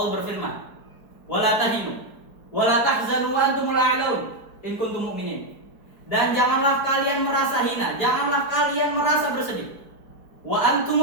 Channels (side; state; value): right; late; 4.6 ms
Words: berfirman, "Wala tahinu wala tahzanu wa antumul a'laun in kuntum mu'minin." Dan janganlah kalian merasa hina, janganlah kalian merasa bersedih. Wa